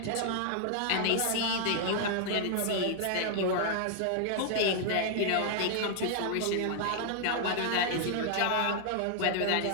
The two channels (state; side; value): different; both; correlation 0.00